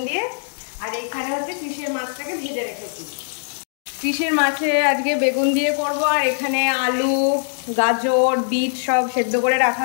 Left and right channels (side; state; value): right; silent; digital silence